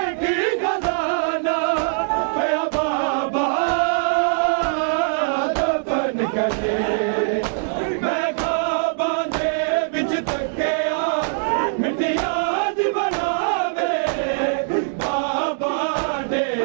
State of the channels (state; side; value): silent; left; digital silence